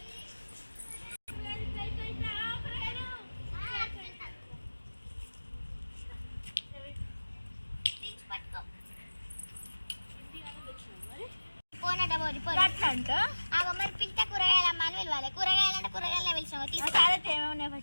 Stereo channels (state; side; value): inverted; both; correlation -1.00